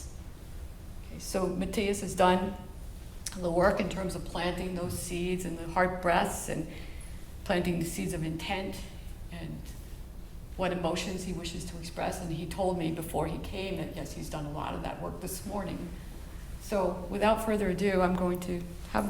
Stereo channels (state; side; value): identical; both; correlation 1.00